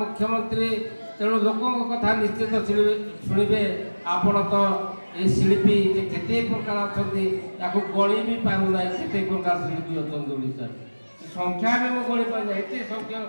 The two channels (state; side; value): inverted; both; correlation -1.00